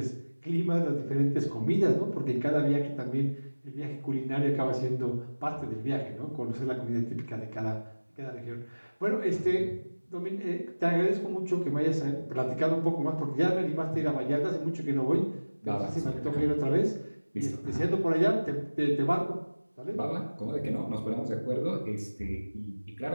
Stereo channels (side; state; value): both; inverted; correlation -1.00